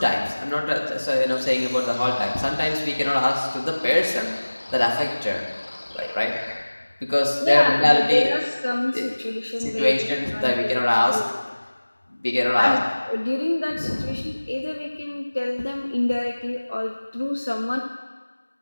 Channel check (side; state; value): both; inverted; correlation -1.00